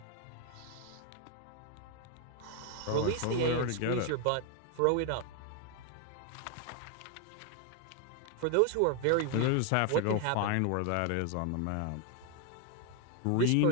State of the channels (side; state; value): both; different; correlation 0.01